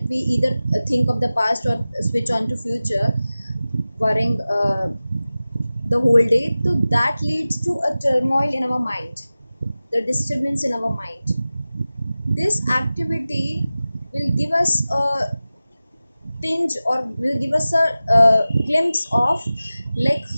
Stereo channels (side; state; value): both; inverted; correlation -0.96